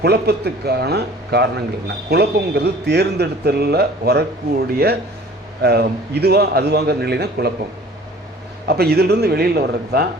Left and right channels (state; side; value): normal; both; correlation 0.48